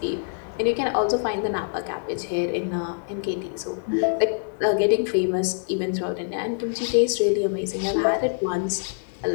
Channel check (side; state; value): right; silent; 60 dB below the other